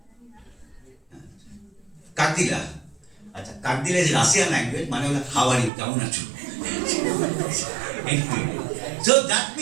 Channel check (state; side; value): drops out; left; at 5.7 s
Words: কাকদিলা। আচ্ছা, কাকদিলা ইজ রাশিয়ান ল্যাঙ্গুয়েজ, মানে হলো হাউ আর ইউ, কেমন আছো। সো দ্যাট